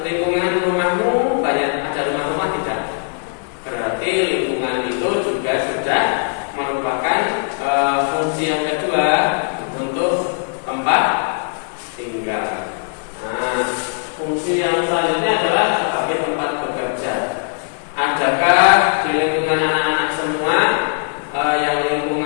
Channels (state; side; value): silent; right; 60 dB below the other